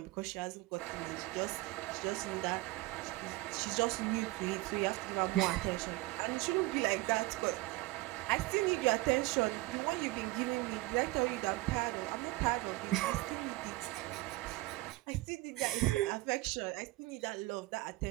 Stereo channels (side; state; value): left; quieter; 20.7 dB